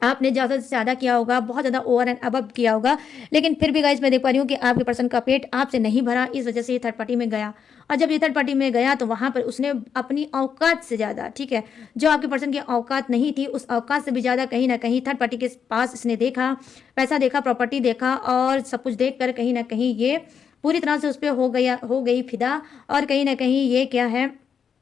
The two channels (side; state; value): right; quieter; 7.0 dB